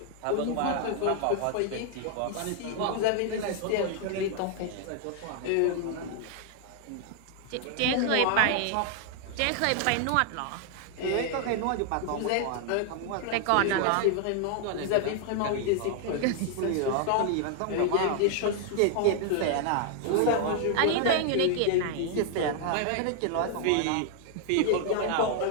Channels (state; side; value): different; both; correlation 0.00